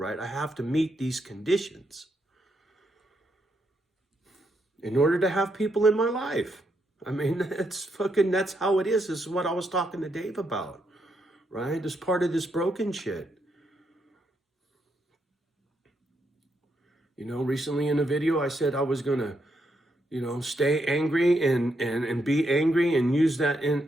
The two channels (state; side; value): normal; both; correlation 0.79